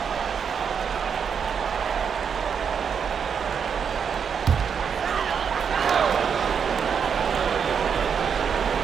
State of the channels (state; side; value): quieter; left; 6.9 dB